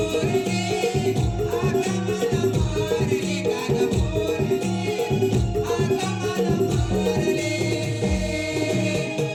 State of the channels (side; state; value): both; identical; correlation 1.00